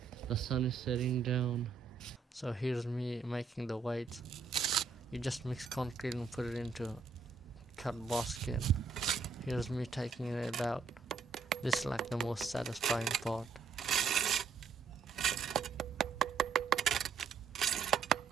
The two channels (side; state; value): left; quieter; 5.3 dB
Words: The sun is setting down. So here's me making the white. You just mix concrete and put it into cut basket. Here's me taking it out. This is like the most satisfying part.